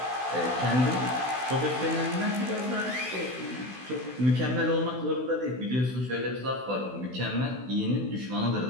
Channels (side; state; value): left; late; 16 ms